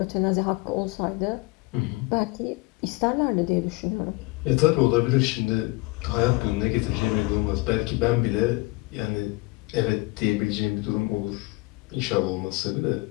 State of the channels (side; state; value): right; quieter; 24.0 dB